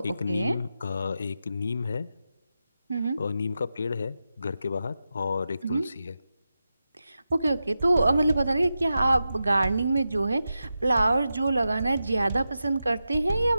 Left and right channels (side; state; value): both; inverted; correlation -0.91